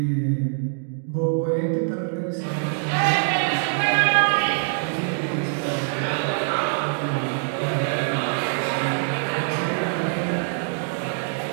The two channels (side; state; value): left; silent; digital silence